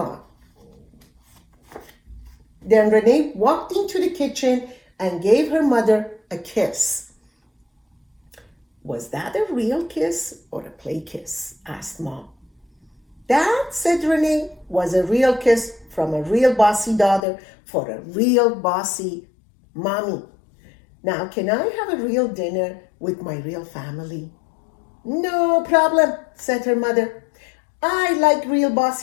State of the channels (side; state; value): right; drops out; at 17.2 s